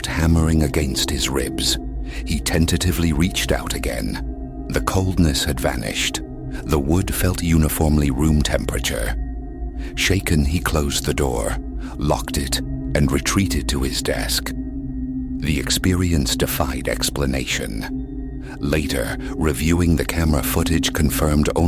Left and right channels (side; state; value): both; identical; correlation 1.00